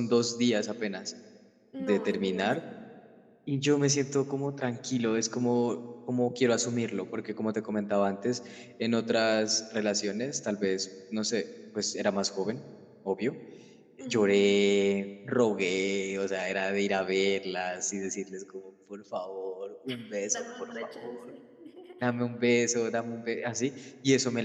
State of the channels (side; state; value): both; identical; correlation 1.00